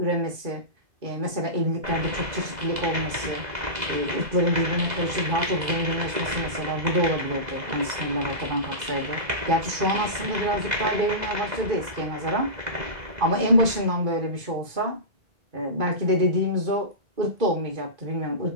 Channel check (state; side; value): late; left; 2.3 ms